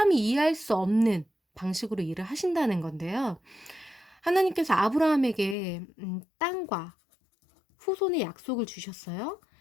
이해할 수 없는 방식으로 일을 하신다는 건데요. 하나님께서 아브라함에게 땅과 후손의 약속을 주셨어요.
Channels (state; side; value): drops out; right; at 5.6 s